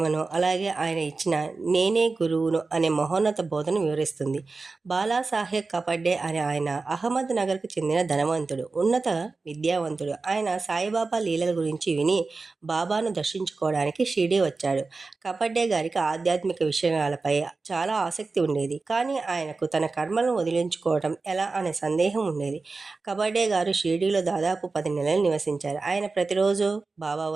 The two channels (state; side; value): quieter; left; 3.9 dB